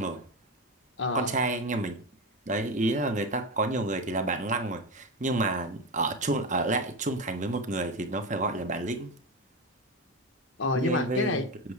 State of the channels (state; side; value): normal; both; correlation 0.17